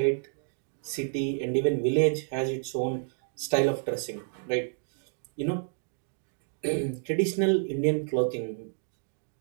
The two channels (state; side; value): silent; left; digital silence